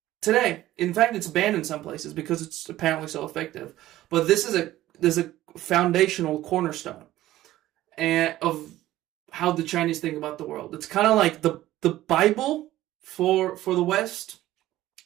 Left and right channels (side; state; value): left; quieter; 15.0 dB